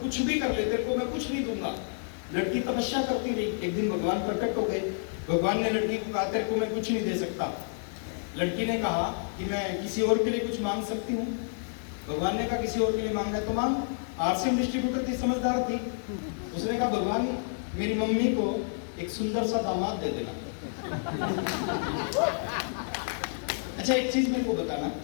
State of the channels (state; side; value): silent; right; digital silence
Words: कुछ भी कर ले, तेरे को मैं कुछ नहीं दूंगा। लड़की तपस्या करती रही, एक दिन भगवान प्रकट हो गए। भगवान ने लड़की को कहा तेरे को मैं कुछ नहीं दे सकता। लड़की ने कहा कि मैं किसी और के लिए कुछ मांग सकती हूँ। भगवान ने कहा किसी और के लिए मांग रहा है तो मांग। आरसीएम डिस्ट्रीब्यूटर थी, समझदार थी, उसने कहा भगवान मेरी मम्मी को एक सुंदर सा दामाद दे देना। अच्छा एक चीज मेरे को बताना,